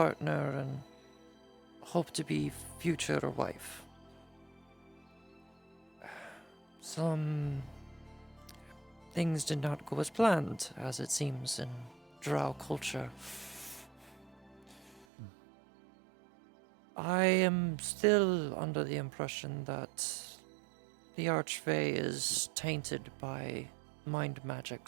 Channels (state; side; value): drops out; left; at 15.1 s